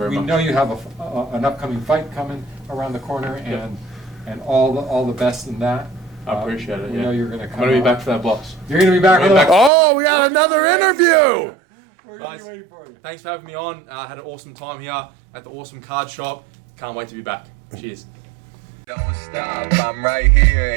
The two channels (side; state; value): left; drops out; at 9.7 s